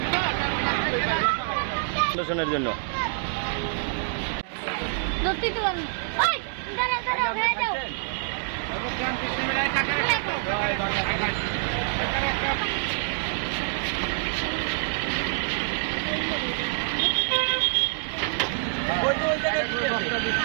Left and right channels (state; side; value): silent; left; digital silence